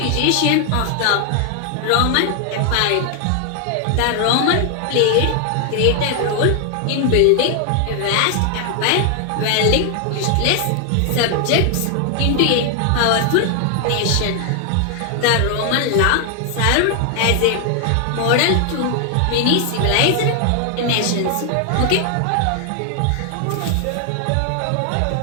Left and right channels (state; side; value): different; both; correlation 0.00